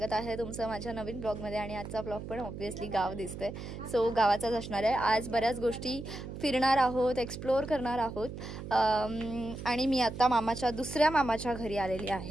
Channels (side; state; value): right; noise; hum, 9 dB below the sound